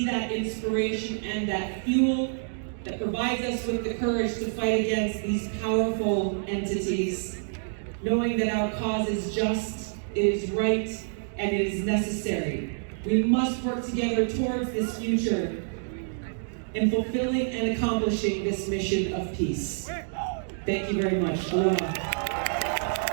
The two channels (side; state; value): left; silent; digital silence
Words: that inspiration and that fuel that provides us with the courage to fight against these powerful entities, knowing that our cause is just, it is right, and it is necessary. We must work together towards this future in fulfilling and accomplishing this mission of peace. Thank you very much. Aloha.